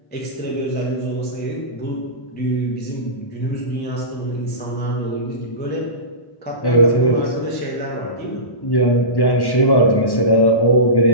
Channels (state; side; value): late; right; 1.1 ms